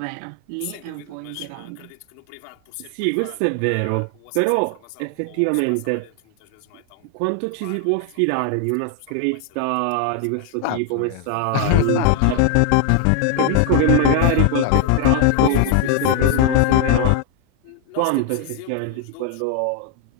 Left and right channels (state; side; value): different; both; correlation 0.00